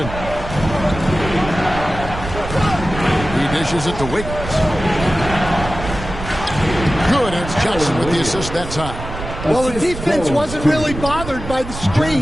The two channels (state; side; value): noise; right; rumble, 9 dB below the sound